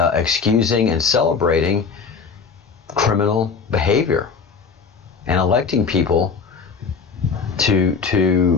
and celebrating criminal behavior and electing people to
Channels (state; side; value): quieter; right; 5.4 dB